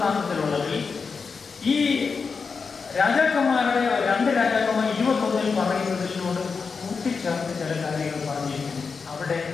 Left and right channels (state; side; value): quieter; right; 5.1 dB